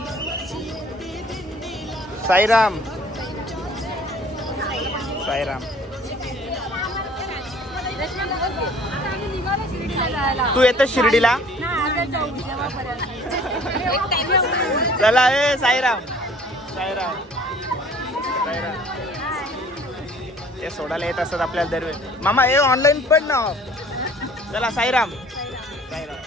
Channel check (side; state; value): both; normal; correlation 0.52